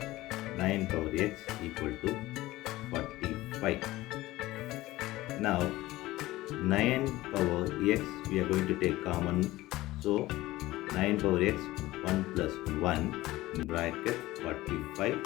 9 power x equal to 45. Now 9 power x we are going to take common, so 9 power x 1 plus 1 in bracket 45.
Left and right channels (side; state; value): right; quieter; 17.7 dB